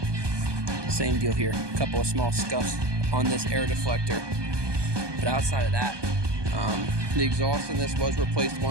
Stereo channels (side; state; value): left; late; 1.2 ms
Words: Same deal here. A couple of small scuffs on this air deflector. But outside of that, the exhaust in this was replaced